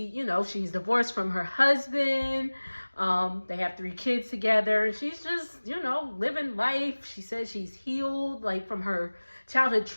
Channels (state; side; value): inverted; both; correlation -1.00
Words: divorced from her husband. They have 3 kids together. She's just, living life. She says she's healed, like, from her childhood